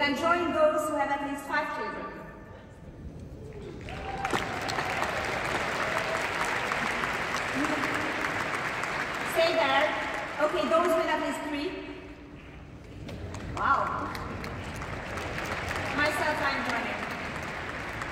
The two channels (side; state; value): both; identical; correlation 1.00